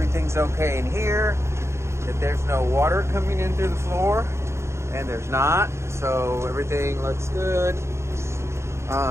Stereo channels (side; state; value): left; late; 0.13 ms